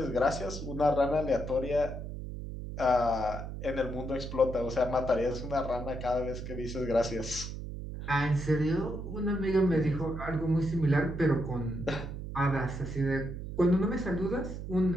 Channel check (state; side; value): noise; right; hum, 7 dB below the sound